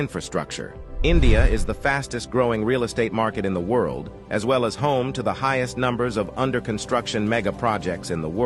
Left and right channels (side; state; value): both; identical; correlation 1.00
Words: India is the fastest growing real estate market in the world, as well as home to the highest numbers of under-construction mega projects in the